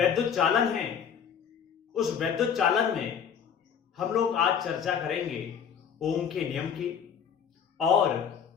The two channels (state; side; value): quieter; right; 7.6 dB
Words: चालन है, उस वैद्युत चालन में हम लोग आज चर्चा करेंगे ओम के नियम की और